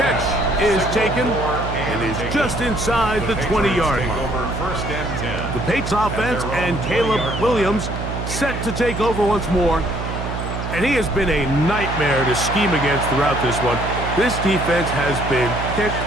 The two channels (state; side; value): noise; right; hum, 5 dB below the sound